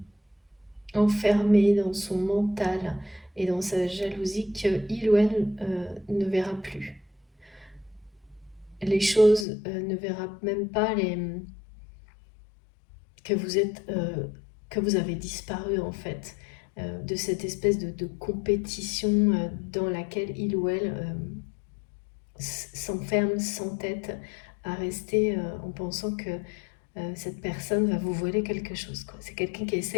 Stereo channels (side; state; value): right; drops out; at 9.5 s